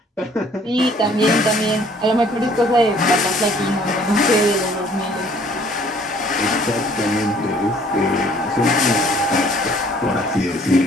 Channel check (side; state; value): both; normal; correlation 0.58